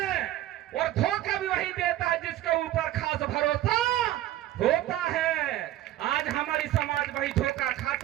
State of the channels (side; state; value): left; quieter; 14.0 dB